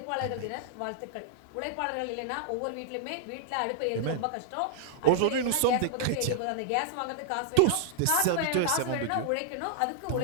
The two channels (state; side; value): different; both; correlation -0.01